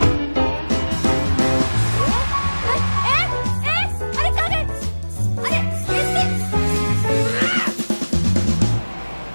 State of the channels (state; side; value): inverted; both; correlation -1.00